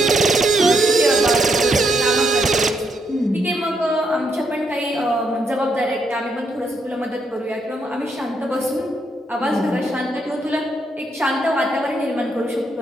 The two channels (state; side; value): normal; both; correlation 0.77